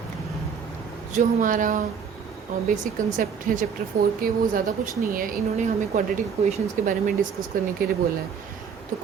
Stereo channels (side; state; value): left; quieter; 6.7 dB